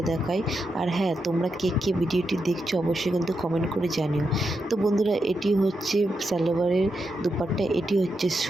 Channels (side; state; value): both; normal; correlation 0.85